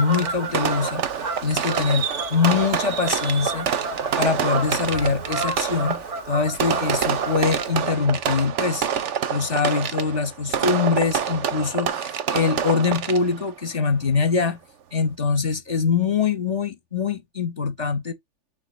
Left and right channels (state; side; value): late; left; 3.4 ms